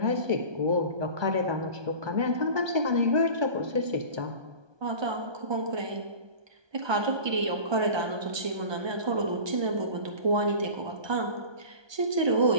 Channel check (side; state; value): left; late; 1.2 ms